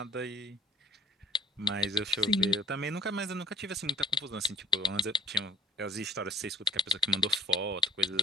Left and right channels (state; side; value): normal; both; correlation 0.56